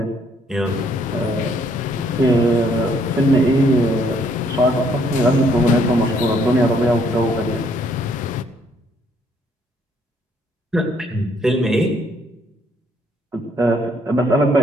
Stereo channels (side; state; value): both; normal; correlation 0.67